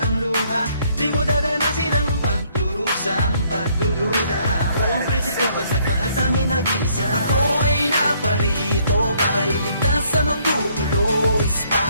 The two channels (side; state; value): both; inverted; correlation -0.66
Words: luha. Di mo dadanasin ang pagdurusang pagdududa. Ako ang prinsipe, pag nagmahal tanging nag-iisa. Ako ay naparito para iligtas sa manggugulo.